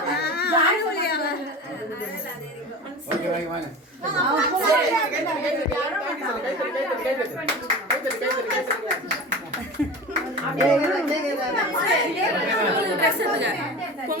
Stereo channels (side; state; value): both; normal; correlation 0.33